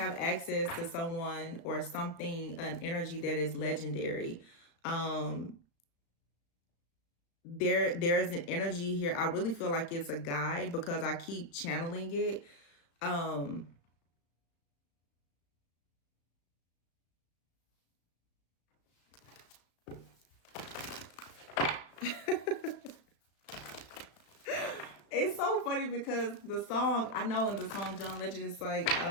access to someone or something, an energy that is legendary. There's an energy here. I really feel like it's a guide because I keep channeling it. It's so funny because the song, I know in the song John Legend, it's like,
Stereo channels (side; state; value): right; late; 35 ms